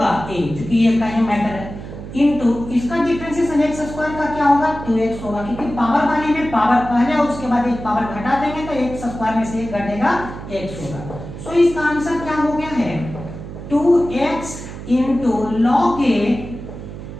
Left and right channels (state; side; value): noise; right; hum, 11 dB below the sound